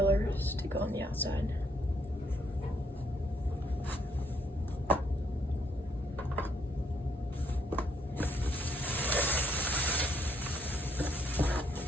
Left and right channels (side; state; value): both; normal; correlation 0.71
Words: to go on the outside.